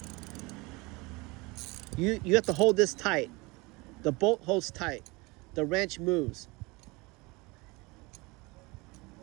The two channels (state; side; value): quieter; left; 25.0 dB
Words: You have to hold this tight. The bolt holds tight. The wrench moves.